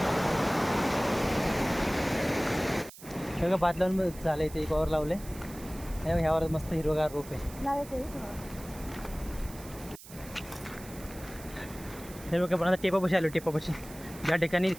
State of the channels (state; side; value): noise; right; hiss, 17 dB below the sound